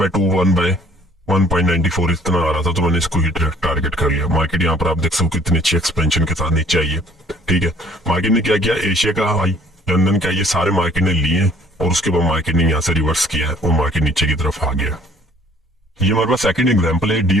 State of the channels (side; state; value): both; normal; correlation 0.58